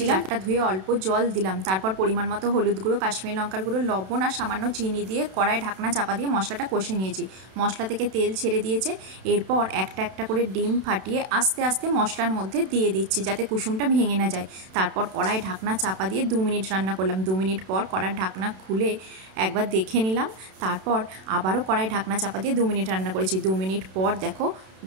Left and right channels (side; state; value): left; late; 32 ms